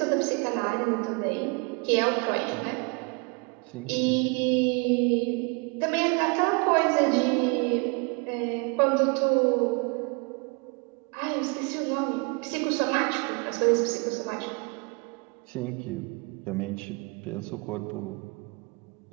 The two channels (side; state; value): left; quieter; 32.0 dB